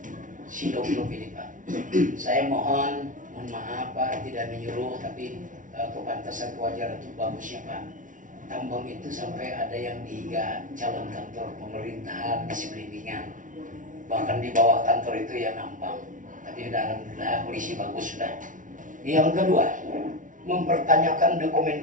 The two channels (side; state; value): left; late; 0.38 ms